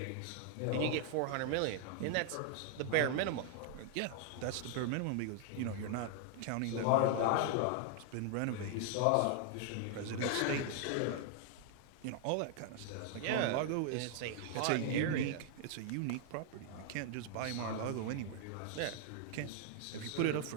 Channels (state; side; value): different; both; correlation 0.00